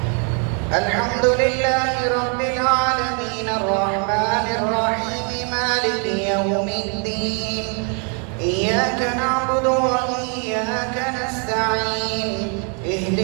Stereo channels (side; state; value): left; quieter; 39.1 dB